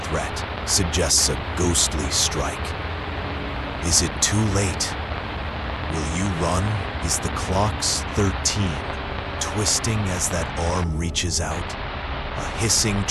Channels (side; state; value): both; identical; correlation 1.00